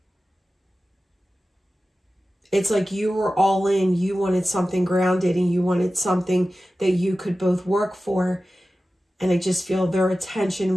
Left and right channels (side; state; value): both; normal; correlation 0.95